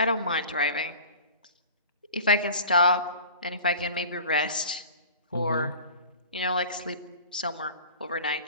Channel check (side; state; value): both; inverted; correlation -0.40